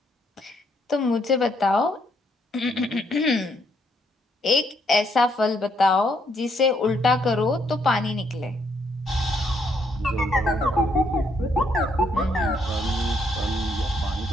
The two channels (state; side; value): normal; both; correlation 0.72